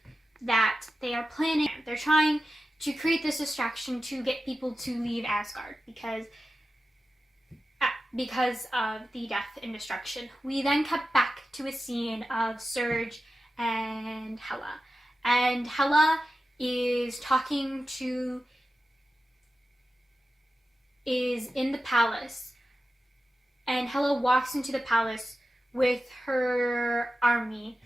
they're trying to create this distraction to get people to leave Asgard because of the death and destruction. We then cut back to a scene of Surge and Hela. And Hela is in the palace. And Hela walks into the palace with her army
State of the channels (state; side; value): normal; both; correlation 0.93